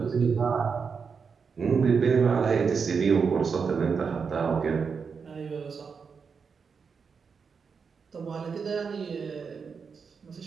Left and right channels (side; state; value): left; quieter; 5.7 dB